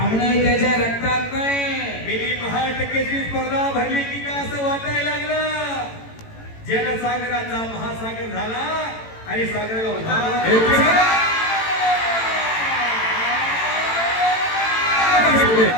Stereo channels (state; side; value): late; right; 18 ms